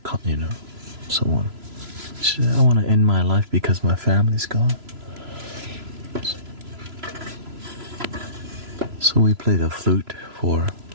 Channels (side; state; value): left; late; 3.0 ms